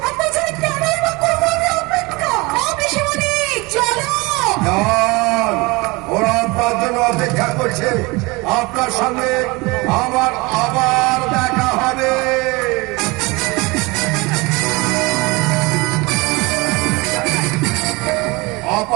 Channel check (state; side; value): quieter; left; 24.7 dB